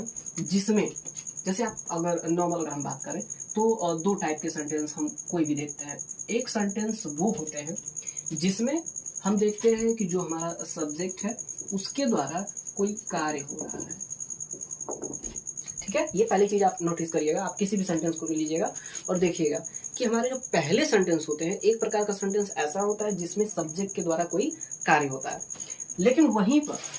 जिसमें, जैसे आप अगर नॉर्मल अगर हम बात करें तो दो टाइप के सेंटेंस हम कोई भी देखते हैं। एक सेंटेंस वो होते हैं जिसमें हम देखते हैं कि जो हमारा सब्जेक्ट है उसके द्वारा कोई कार्य हो रहा है। ठीक है, ये पहली चीज आप नोटिस करिएगा। आप किसी भी सेंटेंस को लीजिएगा और देखिएगा कि हमारे जो पहले सेंटेंस होते हैं, एक प्रकार का सेंटेंस ऐसा होता है जिसमें सब्जेक्ट के द्वारा कोई कार्य होता है। लेकिन वहीं पर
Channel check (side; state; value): both; identical; correlation 1.00